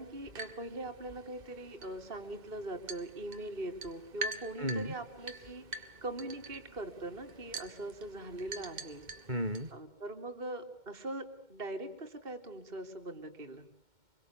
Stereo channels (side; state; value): left; late; 2.1 ms